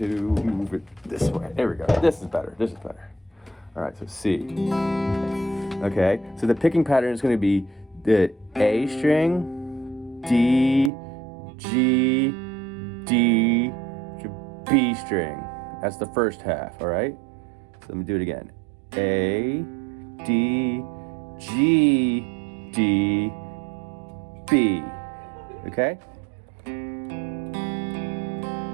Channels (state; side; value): drops out; left; at 10.9 s